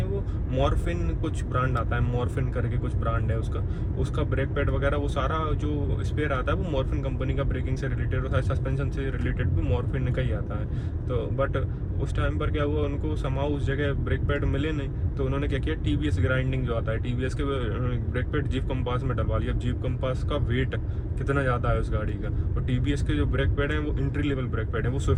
वो मॉर्फिन कुछ ब्रांड आता है, मॉर्फिन करके कुछ ब्रांड है उसका ब्रेक पैड वगैरह वो सारा जो स्पेयर आता है वो मॉर्फिन कंपनी का, ब्रेकिंग से रिलेटेड और सस्पेंशन से रिलेटेड भी मॉर्फिन का ही आता है। तो बट उस टाइम पर क्या हुआ, उनको समाओ उस जगह ब्रेक पैड मिले नहीं, तो उन्होंने क्या किया, TVS ग्राइंडिंग जो आता है TVS के ब्रेक पैड जीप कंपास में डलवा लिया। जीप कंपास का वेट कितना ज़्यादा है उस गाड़ी का, और TVS के जो ब्रेक पैड हैं वो एंट्री लेवल ब्रेक पैड है। वो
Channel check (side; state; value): both; identical; correlation 1.00